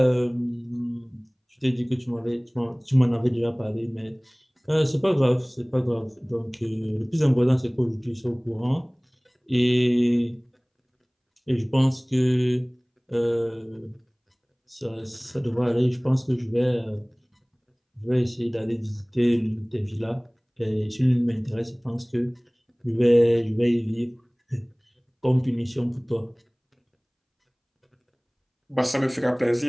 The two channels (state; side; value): identical; both; correlation 1.00